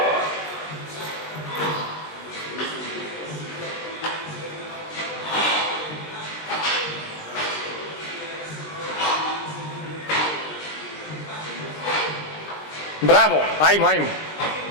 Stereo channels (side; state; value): right; late; 19 ms